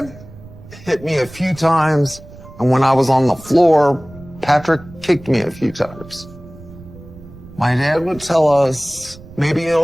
hit me a few times, and when I was on the floor, Patrick kicked me a few times. My dad would tell us, maybe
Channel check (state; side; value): noise; right; rumble, 19 dB below the sound